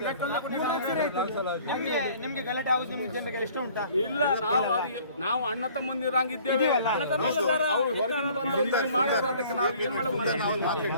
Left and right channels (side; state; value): both; inverted; correlation -0.53